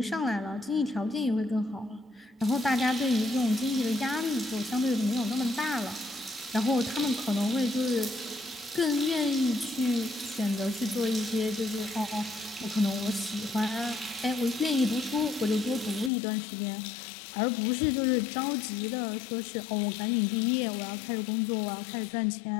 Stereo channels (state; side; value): drops out; right; at 16.1 s